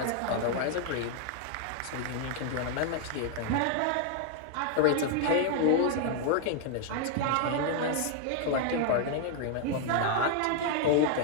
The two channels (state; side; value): different; both; correlation 0.00